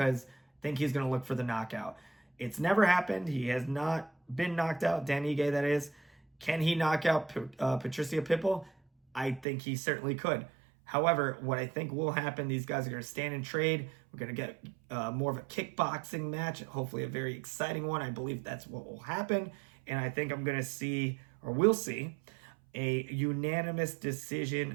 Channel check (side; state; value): left; drops out; at 9.5 s